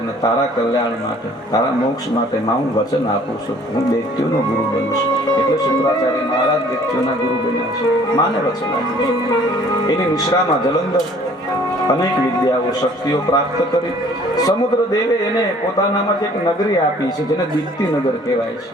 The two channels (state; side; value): normal; both; correlation 0.55